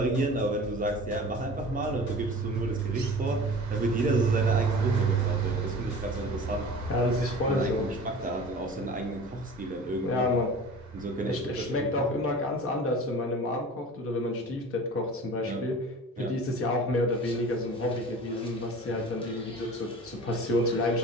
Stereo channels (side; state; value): both; normal; correlation 0.39